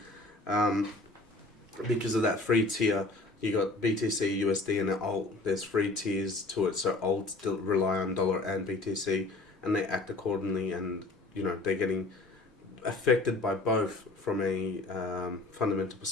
because of that free tier, you got BTC, USD, and alt. There's free tiers to it. So alt still rely on dollar and BTC, and they act accordingly. And they're getting affected by both from a fundamental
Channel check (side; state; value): right; quieter; 3.1 dB